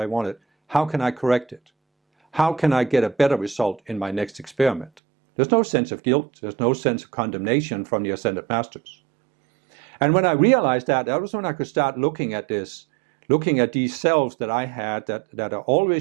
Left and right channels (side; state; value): left; drops out; at 4.9 s